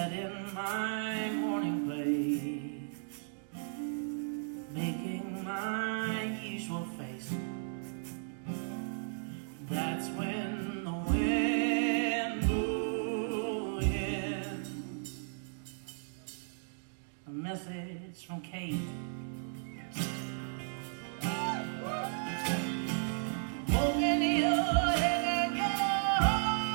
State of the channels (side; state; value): left; silent; digital silence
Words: in my morning place, making my usual face. That's when the wind blew in. A message from Kate. Open your head and your